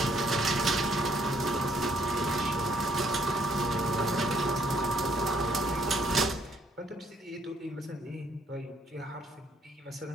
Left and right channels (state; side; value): normal; both; correlation 0.67